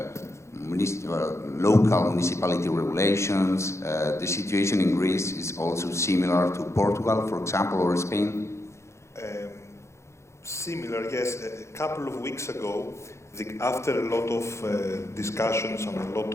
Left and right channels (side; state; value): right; late; 0.14 ms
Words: local municipality regulations. The situation in Greece is also similar to Portugal, for example, or Spain? Similar, yes. A couple of weeks ago, after a lot of discussions and a lot